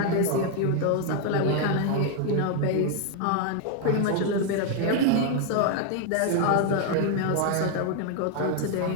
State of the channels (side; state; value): both; different; correlation 0.00